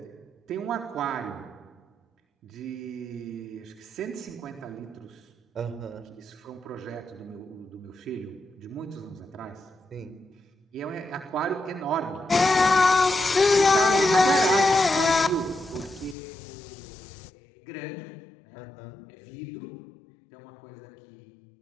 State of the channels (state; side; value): drops out; right; at 16.2 s